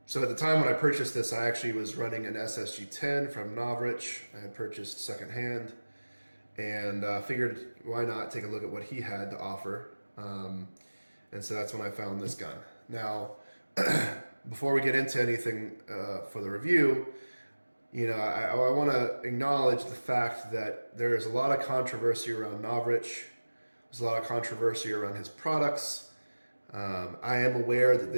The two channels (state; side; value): inverted; both; correlation -1.00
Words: at the time when I purchased this, I actually was running an SSG10 from Novritsch. I had purchased secondhand, and figured why not take a look at what he had to offer. And so that's when I found this gun. Now, before we get into anything for the review, I want to acknowledge the fact that there is a lot of controversy around Novritsch. There's a lot of controversy around his products. I am aware that